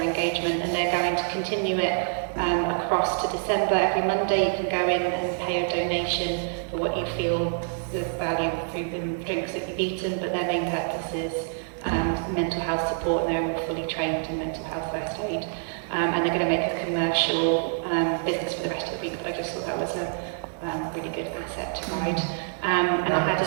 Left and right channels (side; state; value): left; silent; digital silence